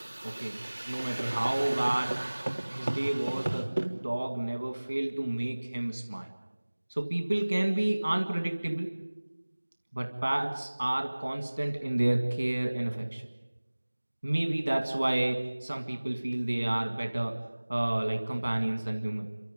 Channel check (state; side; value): inverted; both; correlation -1.00